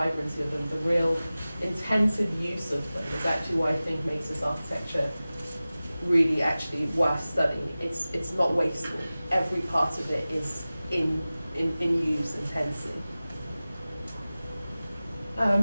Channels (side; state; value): both; inverted; correlation -0.97